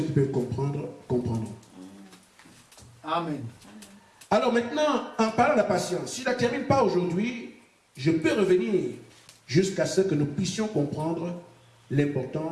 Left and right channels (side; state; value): both; identical; correlation 1.00